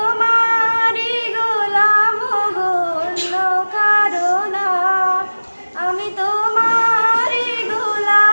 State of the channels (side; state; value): both; inverted; correlation -1.00